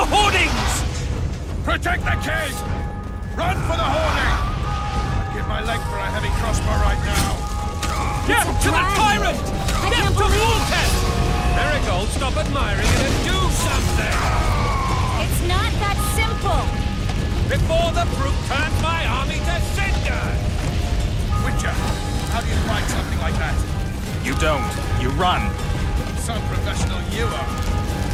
hoardings! Protect the king! Run for the hoarding! I'd give my leg for a heavy crossbow right now. Get to the tyrant! Get to Woltest! Marigold, stop admiring it and do something! It's not that simple! Before the brute turns my army to cinder! Witcher, how do you fight something like that? You don't. You run. Some professional you are.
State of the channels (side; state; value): both; identical; correlation 1.00